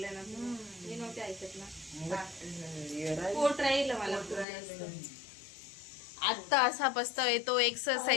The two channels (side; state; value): right; drops out; at 4.5 s